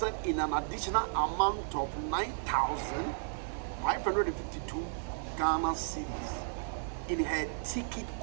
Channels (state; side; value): silent; left; digital silence